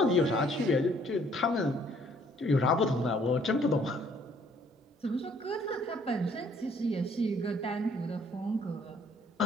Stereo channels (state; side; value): normal; both; correlation 0.62